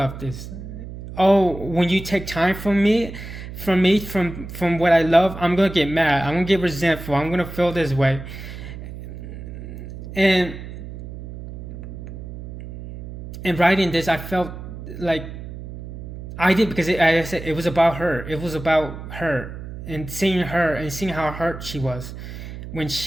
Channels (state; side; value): noise; right; hum, 11 dB below the sound